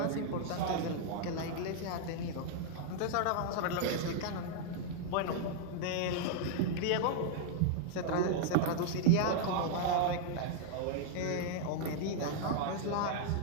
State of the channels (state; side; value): different; both; correlation -0.01